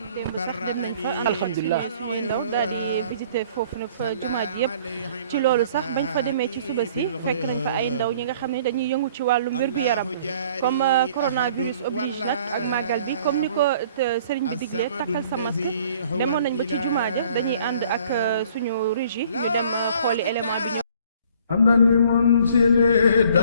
sax dem nañ fa alhamdulilah suñuy ndaw daal di visiter foofu nag fa jumaa ji yëpp ci loolu sax bañ fa demee ci suba si fekk nañ fa ay ndaw ñi nga xam ne dañuy yëngu ci wàllum wér-gu-yaram comme coronavirus oblige nag ak màggal bi comme ni ko sëriñ bi diglee takkal sa masque demoon nañ ba ci jumaa ja dañuy ànd ak suñu régie ñu dem xooli élément bi ñëw am na li mun sili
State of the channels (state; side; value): inverted; both; correlation -0.56